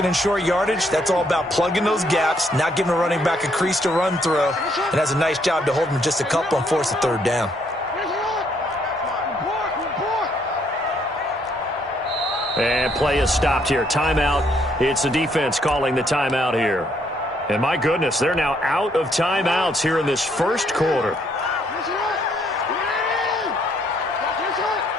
and short yardage, that's all about plugging those gaps, not giving a running back a crease to run through, and has a nice job to hold him just a couple and force a 3rd down. And play is stopped here. Timeout. It's the defense calling the timeout here. And my goodness, they're now out of timeouts here in this first quarter.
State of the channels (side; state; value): both; normal; correlation 0.70